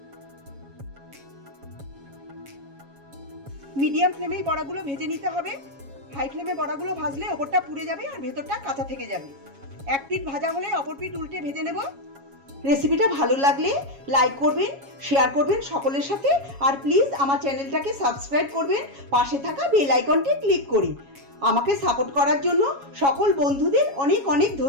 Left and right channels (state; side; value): late; left; 7.3 ms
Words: মিডিয়াম ফ্লেমেই বড়াগুলো ভেজে নিতে হবে। হাই ফ্লেমে বড়াগুলো ভাজলে ওপরটা পুড়ে যাবে আর ভেতরটা কাঁচা থেকে যাবে। এক পিঠ ভাজা হলে অপর পিঠ উল্টে ভেজে নেব। রেসিপিটা ভালো লাগলে লাইক করবেন, শেয়ার করবেন সকলের সাথে, আর প্লিজ আমার চ্যানেলটাকে সাবস্ক্রাইব করবেন। পাশে থাকা বেল আইকনটি ক্লিক করে আমাকে সাপোর্ট করার জন্য সকল বন্ধুদের অনেক অনেক